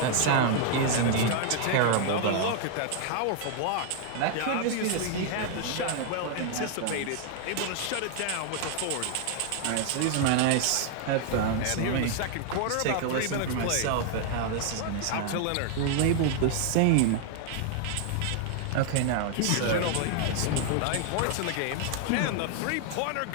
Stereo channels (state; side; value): different; both; correlation 0.00